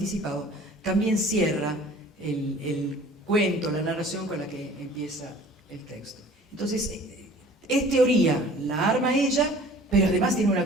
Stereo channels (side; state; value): both; normal; correlation 0.48